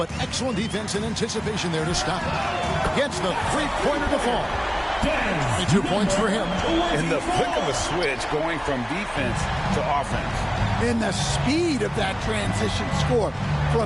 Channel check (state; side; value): identical; both; correlation 1.00